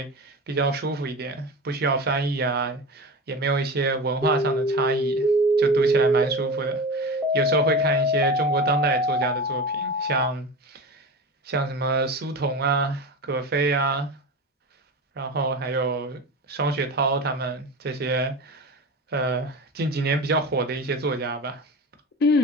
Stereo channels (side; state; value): both; normal; correlation 0.28